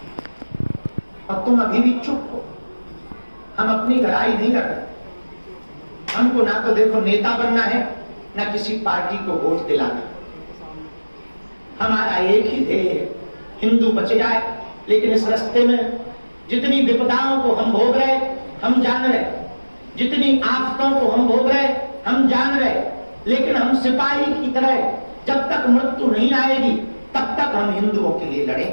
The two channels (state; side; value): inverted; both; correlation -1.00